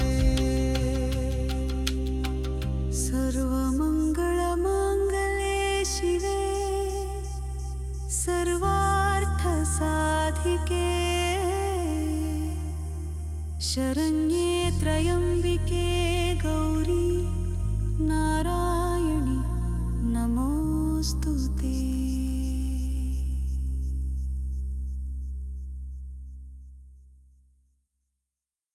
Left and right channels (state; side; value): identical; both; correlation 1.00